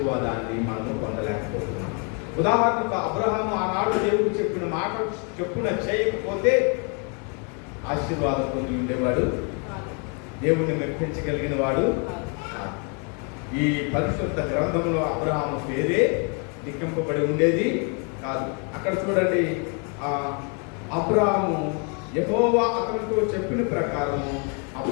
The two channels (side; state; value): right; quieter; 37.2 dB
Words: మనము పొందలేకపోతున్నాం. ఉదాహరణకు అబ్రహాము ఆనాడు దేవుడు చెప్పిన మాట చెప్పున చేయకపోతే ఆశీర్వాదం పొంది ఉండేవాడు, దేవుణ్ణి మెప్పించగలిగిన వాడు. ఈ పరిశుద్ధ గ్రంథంలో అబ్రహాము పేరే లిఖింపబడి ఉండేది కాదు. అక్కడ చూడండి, అబ్రాహాము యెహోవా అతనితో చెప్పిన ప్రకారము